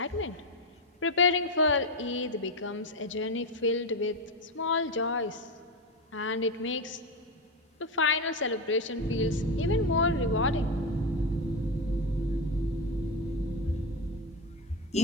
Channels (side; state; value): both; normal; correlation 0.14